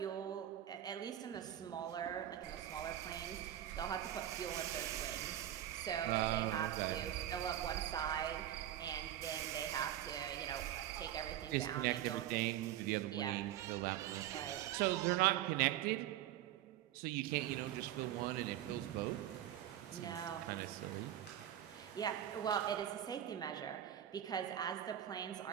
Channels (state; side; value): quieter; left; 12.0 dB